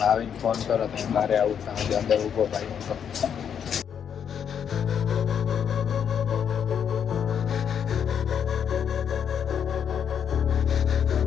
આવીને ફોન કરો તો હું બહાર આવું છું અંદર ઊભો ભાઈ હું તો.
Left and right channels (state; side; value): quieter; right; 8.1 dB